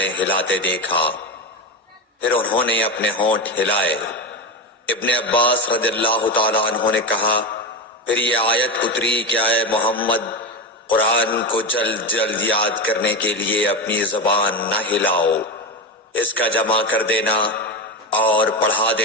ہلاتے دیکھا۔ پھر انہوں نے اپنے ہونٹ ہلائے۔ ابن عباس رضی اللہ تعالیٰ عنہ نے کہا، پھر یہ آیت اتری کہ اے محمد، قرآن کو جلد جلد یاد کرنے کے لیے اپنی زبان نہ ہلاؤ، اس کا جمع کر دینا اور پڑھا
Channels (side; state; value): both; normal; correlation 0.17